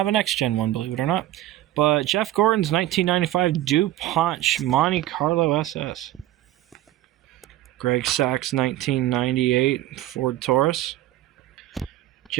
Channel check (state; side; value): quieter; left; 14.5 dB